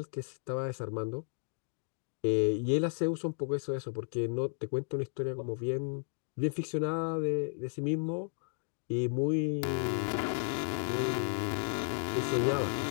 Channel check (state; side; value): silent; right; 55 dB below the other